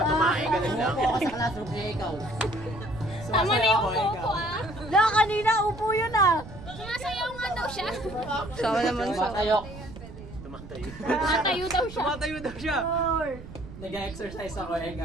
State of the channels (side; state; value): right; noise; rumble, 14 dB below the sound